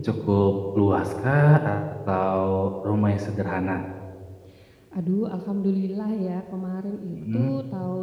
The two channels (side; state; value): both; identical; correlation 1.00